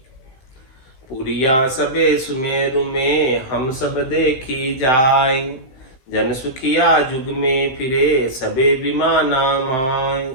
पुरिया सबे सुमेरु में हम सब देखी जाय, जन सुखिया जुग में फिरे सबे विमाना माय।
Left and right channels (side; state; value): right; late; 15 ms